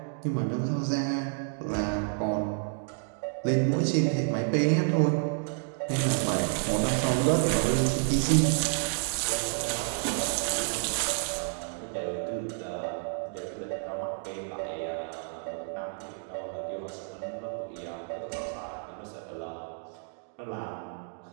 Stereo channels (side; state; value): left; silent; 58 dB below the other